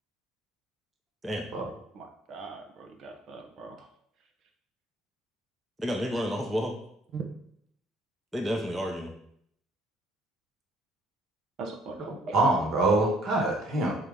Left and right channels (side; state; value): both; normal; correlation 0.62